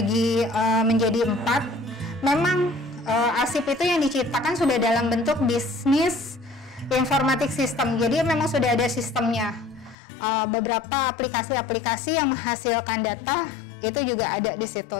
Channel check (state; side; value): drops out; right; at 10.0 s